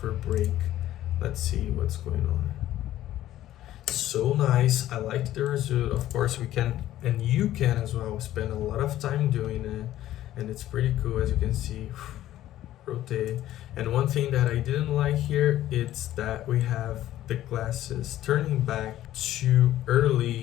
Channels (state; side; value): quieter; right; 13.5 dB